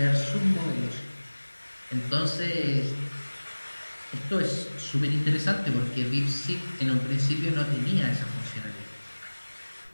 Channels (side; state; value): both; inverted; correlation -1.00